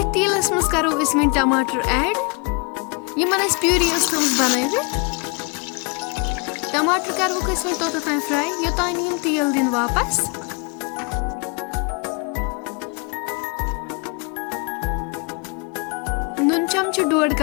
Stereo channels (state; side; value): quieter; right; 31.1 dB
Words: तेलस मज करो वन टमाटर ऐड यमन प्यूरी थम बनवित टमाटर करवुक वन तोत फ्राई योतान यम तेल दिन वापस नुन चमच डोड